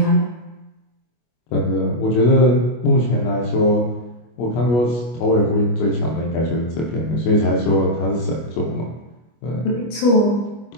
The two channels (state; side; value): late; right; 25 ms